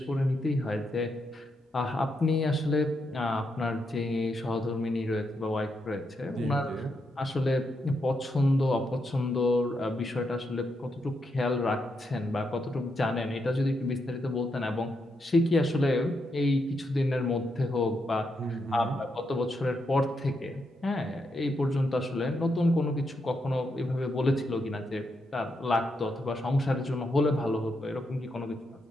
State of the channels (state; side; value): normal; both; correlation 0.82